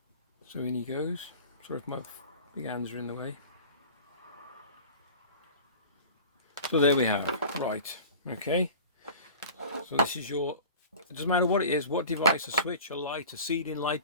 So in he goes. Sorry if my big hands are in the way. So there we have. Right. Okay. So this is your. It doesn't matter what it is, what device, a switch, a light, a ceiling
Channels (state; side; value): inverted; both; correlation -0.40